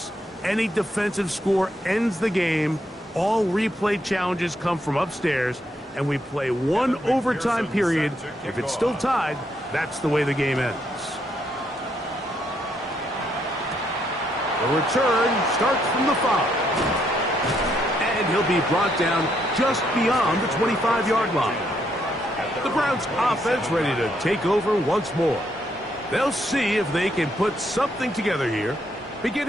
Any defensive score ends the game. All replay challenges come from upstairs. And we play one overtime period. If it's still tied, that's the way the game ends. The return starts from the 5. And he'll be brought down just beyond the 25-yard line. The Browns offense ready to take over once more. They'll see if they can put something together here,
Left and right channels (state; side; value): normal; both; correlation 0.75